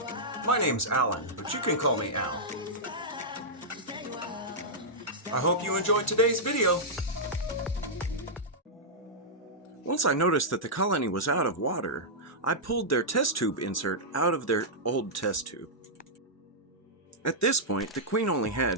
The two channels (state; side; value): normal; both; correlation -0.11